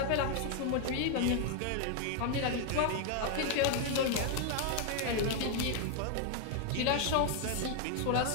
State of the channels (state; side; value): different; both; correlation 0.00